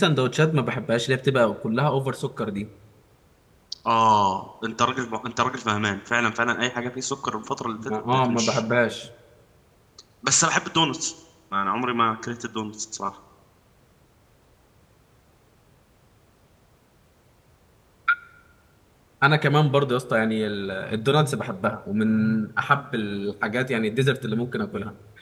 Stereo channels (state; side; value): identical; both; correlation 1.00